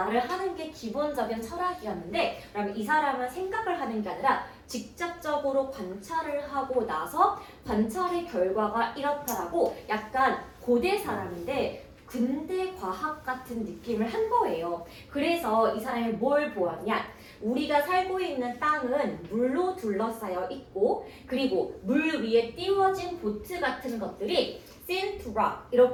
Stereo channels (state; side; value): identical; both; correlation 1.00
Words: 하는 게 기본적인 철학이었는데 그러면 이 사람은 생각을 하는 게 아니라 직접적으로 관찰을 하고 나서 관찰의 결과가 이렇다라고 약간 고대 사람인데 근대 과학 같은 느낌을 한 거예요. 그래서 이 사람이 뭘 보았냐? 우리가 살고 있는 땅은 물로 둘러싸여 있고 그리고 물 위에 띄워진 보트 같은 것들이 seen to rock